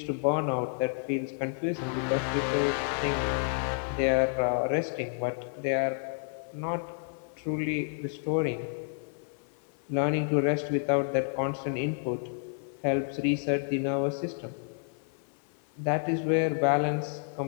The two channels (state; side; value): silent; right; 58 dB below the other